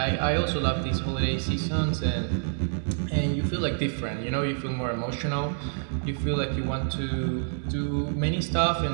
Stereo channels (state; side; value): silent; left; 60 dB below the other